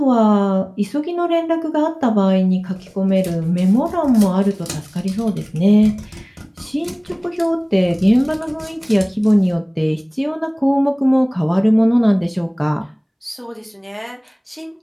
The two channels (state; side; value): identical; both; correlation 1.00